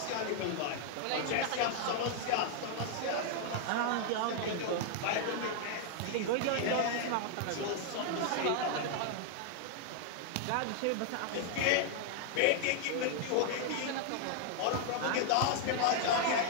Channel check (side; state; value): both; different; correlation 0.00